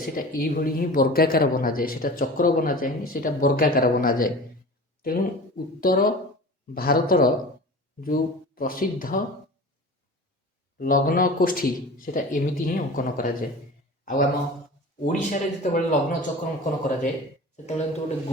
यही ही वर्गाकार बना जाए। सेटा चक्र बना जाए सेटा वर्गाकार बना जाए। तेणु उत्तर भारतर जो प्रसिद्ध लग्न कोष्ठी सेटा एमिति ही अंकन करा जाए। आम ओडिशा रे जितेबाला लग्न चक्र अंकन करा जाए सेतेबाला गोटे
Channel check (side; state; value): both; normal; correlation 0.36